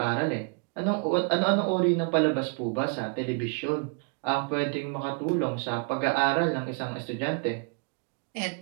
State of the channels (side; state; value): left; quieter; 35.4 dB